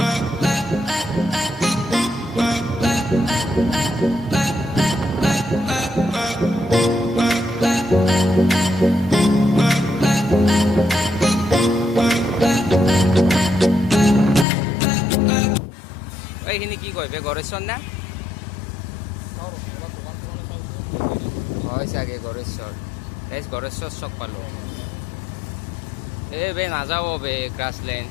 এইখিনি কি কয় বে গড়েশ্বৰ না হয় চাগে গড়েশ্বৰ গড়েশ্বৰ চক পালোঁ বে নাযাব বে গ্ৰাছলেণ্ড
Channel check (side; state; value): right; drops out; at 14.5 s